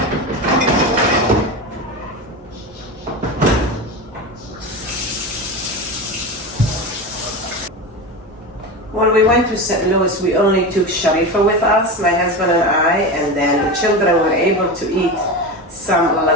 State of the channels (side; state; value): both; normal; correlation 0.23